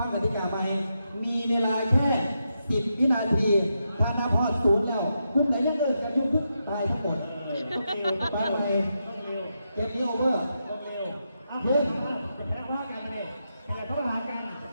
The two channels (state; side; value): inverted; both; correlation -0.84